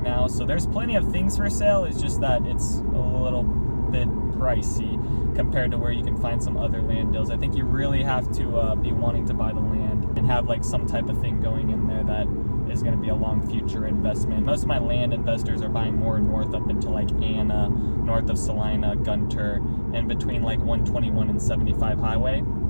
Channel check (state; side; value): inverted; both; correlation -1.00